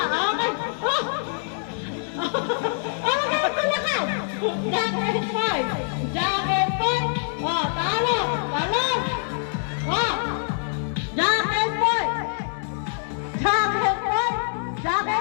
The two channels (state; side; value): silent; right; digital silence